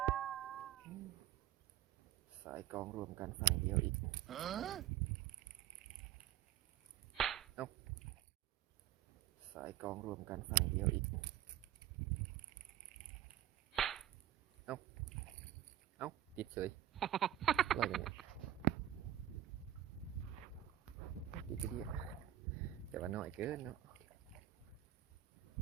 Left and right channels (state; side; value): quieter; left; 12.3 dB